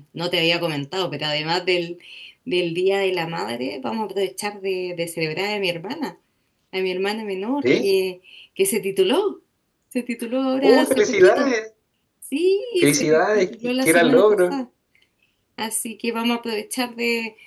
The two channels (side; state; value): both; identical; correlation 1.00